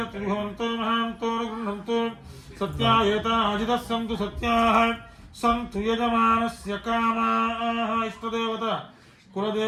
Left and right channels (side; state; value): both; identical; correlation 1.00